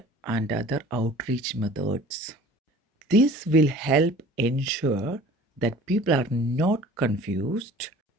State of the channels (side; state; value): both; normal; correlation 0.46